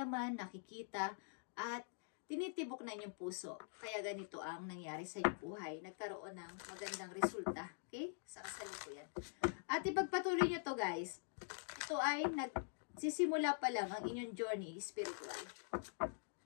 nakikita, at tinitibok na inyong puso. Kaya ganito ang nangyari sa inyong buhay. Nagkaroon ng magandang resulta. Okay? Sa kasalukuyan. At ipagpatuloy nyo to, guys. Ito ay nagsisimula pa lang ang inyong journey spiritual.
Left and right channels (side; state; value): right; silent; digital silence